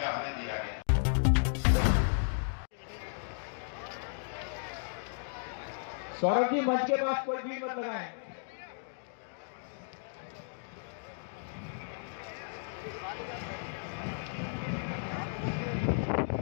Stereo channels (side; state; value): right; silent; digital silence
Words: आने दिया गया। सौरभ जी मंच के पास कोई भीड़ मत लगाएं।